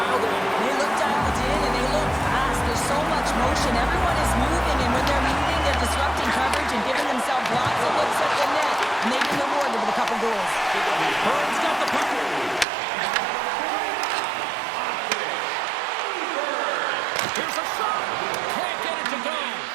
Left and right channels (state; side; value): drops out; left; at 12.7 s